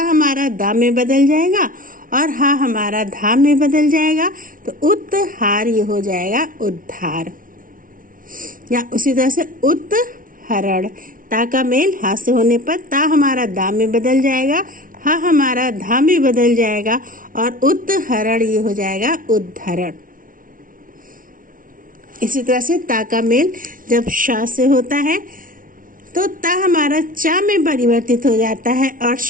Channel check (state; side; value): late; left; 0.39 ms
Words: दा में बदल जाएगा और हा हमारा धा में बदल जाएगा, तो उत्हार ये हो जाएगा उद्धार। या उसी तरह से उत्हरण, ता का मेल हा से होने पर ता हमारा दा में बदल जाएगा, हा हमारा धा में बदल जाएगा और उत्हरण ये हो जाएगा उद्धरण। इसी तरह से ता का मेल जब शा से होता है तो ता हमारा चा में परिवर्तित हो जाता है और